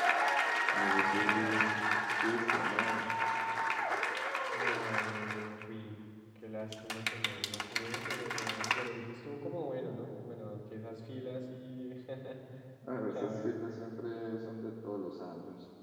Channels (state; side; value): identical; both; correlation 1.00